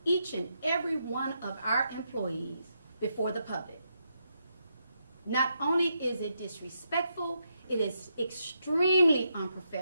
each and every one of our employees before the public. Not only is it disrespectful, it is extremely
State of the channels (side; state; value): both; inverted; correlation -0.81